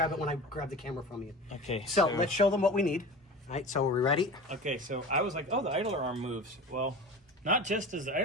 it when I grab the camera from you. Okay. So let's show them what we need. All right, so are we ready? Okay, so I was like, oh, the idler arm moves. Well, not just does the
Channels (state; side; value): normal; both; correlation 0.34